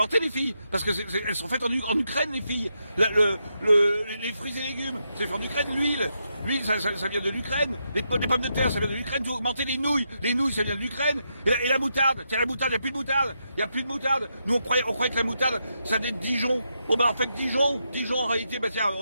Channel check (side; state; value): both; inverted; correlation -0.83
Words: les filles. Parce que elles sont faites en Ukraine, les filles. Les fruits et légumes, c'est fait en Ukraine. L'huile, ça vient de l'Ukraine. Les pommes de terre, ça vient de l'Ukraine. Tout a augmenté. Les nouilles, ça vient de l'Ukraine. Et la moutarde, tiens, la moutarde, il n'y a plus de moutarde. Il n'y a plus de moutarde. Nous, on croyait que la moutarde, ça venait de Dijon. Bon, ben, en fait, Dijon, en réalité, ben, tiens,